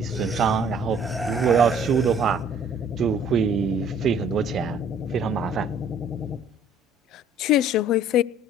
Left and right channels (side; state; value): both; normal; correlation 0.56